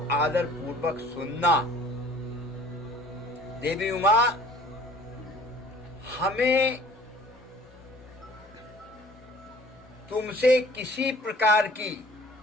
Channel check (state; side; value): normal; both; correlation 0.51